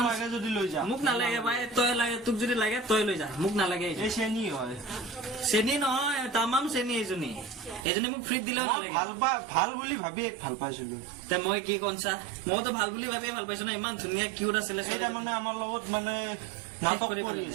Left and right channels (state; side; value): drops out; left; at 7.9 s